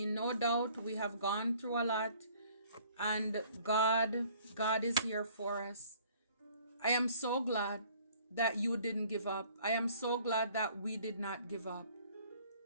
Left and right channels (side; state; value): both; inverted; correlation -0.56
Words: no doubt we have gone through a lot, and God is here for us. I am so glad that you didn't give up. I am so glad that we did not give up.